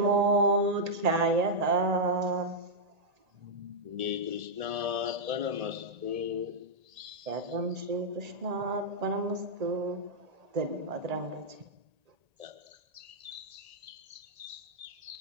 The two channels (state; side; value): late; left; 1.8 ms